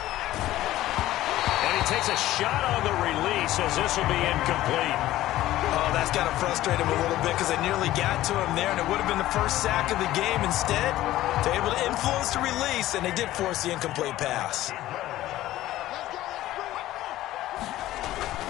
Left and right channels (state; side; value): quieter; right; 15.1 dB